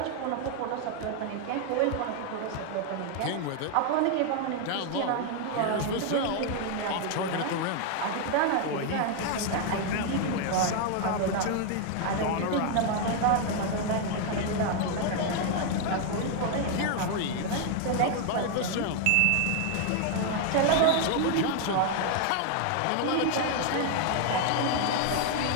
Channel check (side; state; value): both; different; correlation 0.00